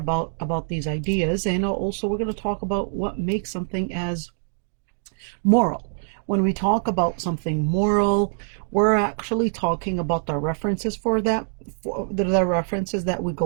these ideas, and also we're going to talk about what makes something as moral. When we talk about something moral, we're actually talking about the references for that, for the references that we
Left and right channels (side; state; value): left; silent; digital silence